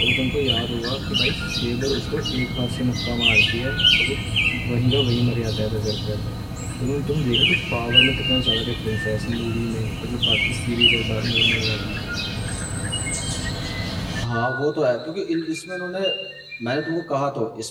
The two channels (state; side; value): identical; both; correlation 1.00